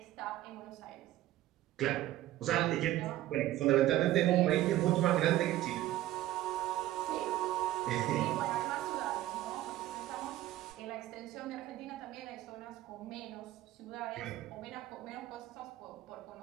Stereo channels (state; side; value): quieter; left; 14.8 dB